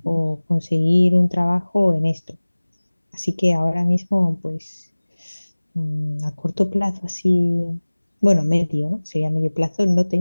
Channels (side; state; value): both; inverted; correlation -1.00